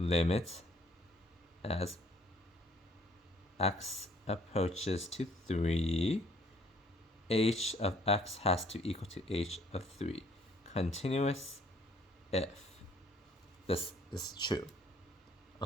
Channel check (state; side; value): normal; both; correlation 0.61